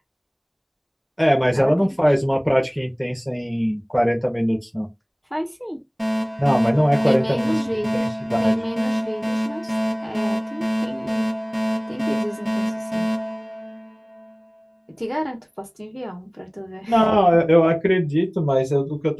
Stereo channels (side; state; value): both; identical; correlation 1.00